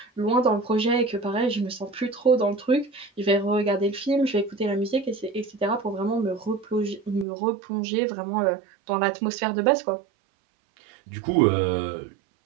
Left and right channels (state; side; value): drops out; left; at 7.2 s